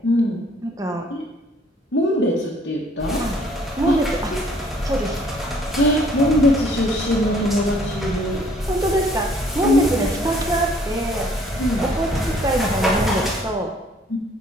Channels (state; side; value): normal; both; correlation 0.60